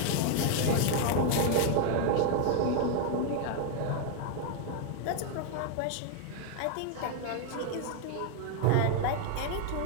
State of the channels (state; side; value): different; both; correlation 0.00